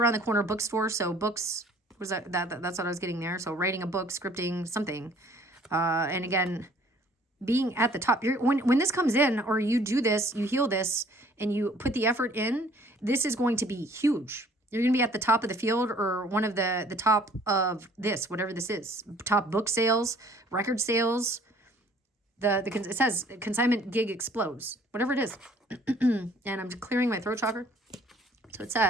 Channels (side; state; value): both; normal; correlation 0.56